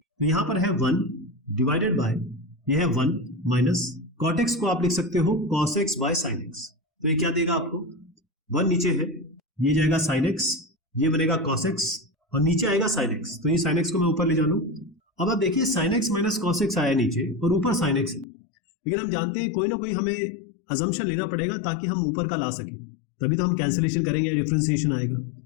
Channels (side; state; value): right; drops out; at 18.2 s